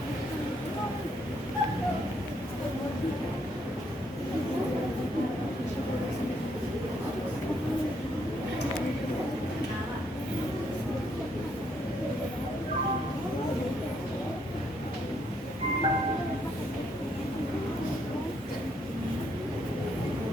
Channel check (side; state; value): both; normal; correlation 0.72